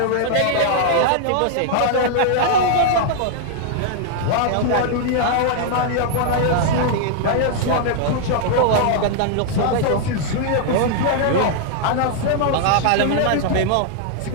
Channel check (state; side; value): different; both; correlation 0.00